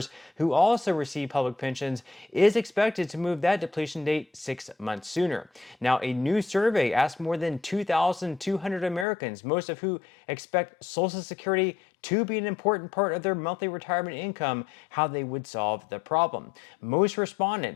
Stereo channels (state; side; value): drops out; right; at 9.1 s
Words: who also receive public pensions, is expected to move that depletion date 6 months sooner. Now, a new survey asked more than 2,200 Americans, most of who expect Social Security to be an important part of their monthly retirement income, how they would solve the problem. Most